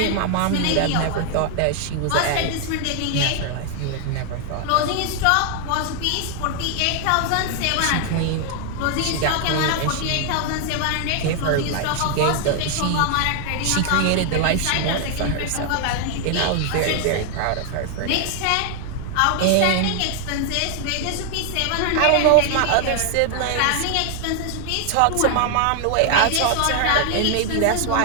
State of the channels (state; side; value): different; both; correlation 0.00